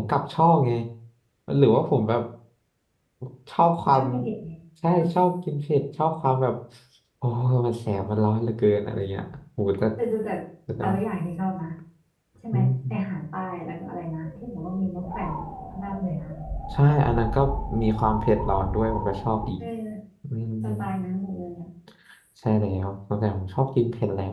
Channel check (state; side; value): identical; both; correlation 1.00